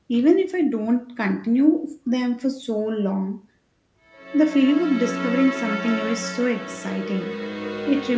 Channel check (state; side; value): identical; both; correlation 1.00